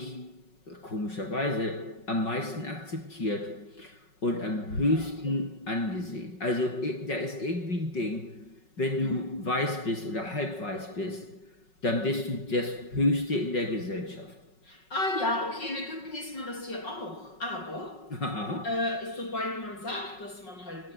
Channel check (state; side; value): late; right; 5.4 ms